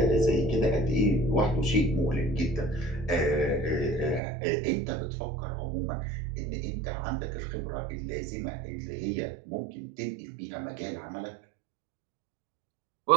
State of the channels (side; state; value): left; drops out; at 4.2 s